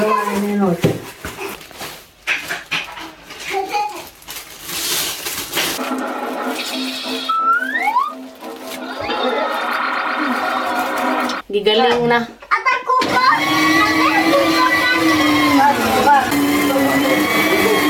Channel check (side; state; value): both; identical; correlation 1.00